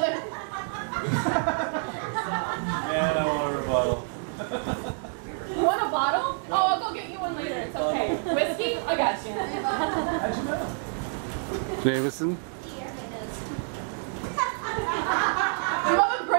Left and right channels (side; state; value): left; silent; 60 dB below the other